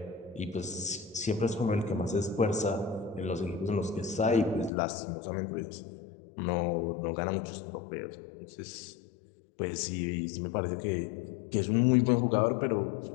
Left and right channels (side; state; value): right; drops out; at 4.7 s